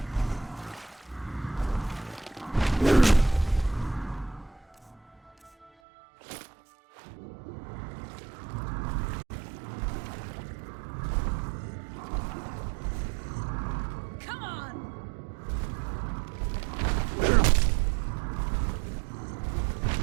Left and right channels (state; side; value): drops out; left; at 5.7 s